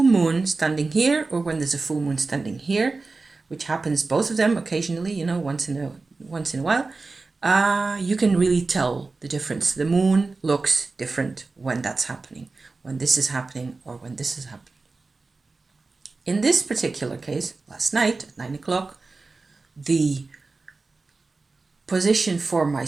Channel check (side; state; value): left; quieter; 3.8 dB